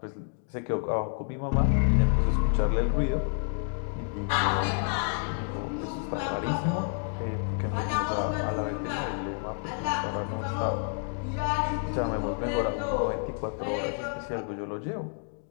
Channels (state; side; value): silent; right; 58 dB below the other